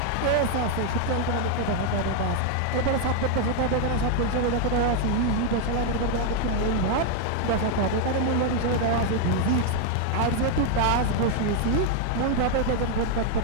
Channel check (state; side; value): different; both; correlation 0.00